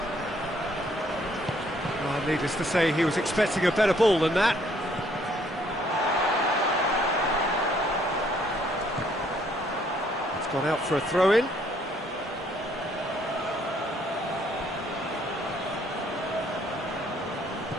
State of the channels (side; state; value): both; normal; correlation 0.65